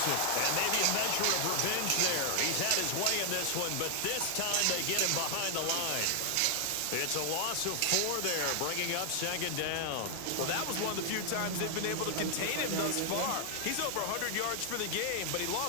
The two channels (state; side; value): different; both; correlation 0.00